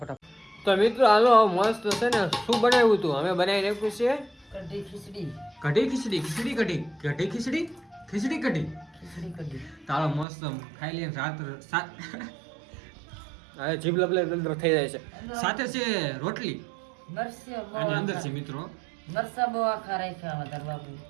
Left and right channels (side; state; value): left; drops out; at 10.2 s